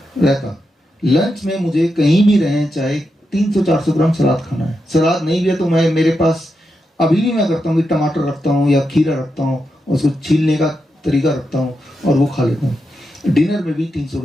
लंच में मुझे कहीं भी रहें, चाहे 300-400 ग्राम सलाद खाना है। सलाद नहीं भी है तो मैं, मेरे पास अभी भी मैं करता हूँ कि टमाटर रखता हूँ या खीरा रखता हूँ, उसको छीलने का तरीका रखता हूँ और वो खा लेता हूँ। डिनर में भी 300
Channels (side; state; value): both; normal; correlation 0.86